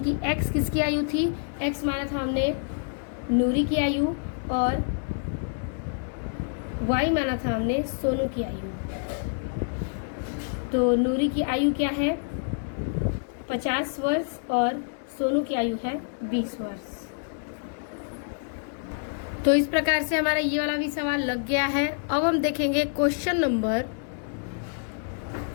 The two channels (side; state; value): right; silent; digital silence